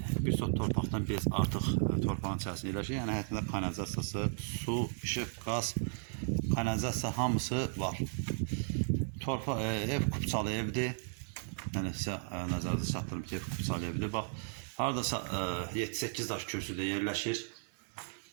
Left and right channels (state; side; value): silent; left; digital silence